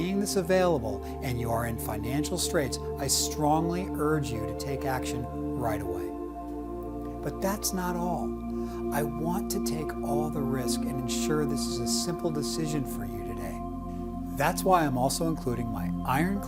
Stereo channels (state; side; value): identical; both; correlation 1.00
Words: this available and you are in financial straits, I strongly urge you to take action right away. But that's not all. I want to take all the risk and ensure this is a simple decision for you today. That's why I'm also including my